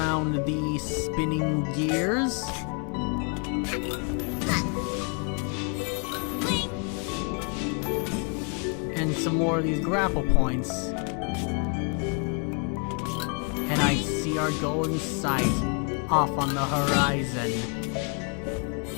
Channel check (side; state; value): right; quieter; 36.7 dB